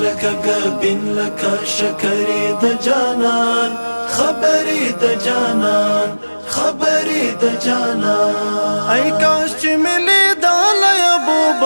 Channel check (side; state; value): both; inverted; correlation -1.00